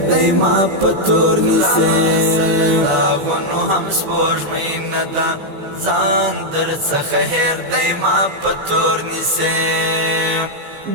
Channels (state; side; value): late; left; 14 ms